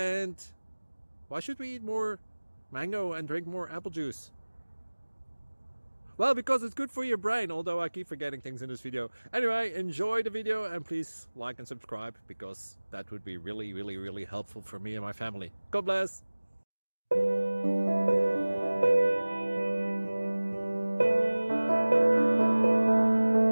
why should we eat more mango and drink more apple juice? Well, because it's good for your brain, although I keep forgetting things in this video. Anyway, enjoy the video and please like and subscribe, because that would be really helpful for me and my family. God bless!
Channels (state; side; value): inverted; both; correlation -1.00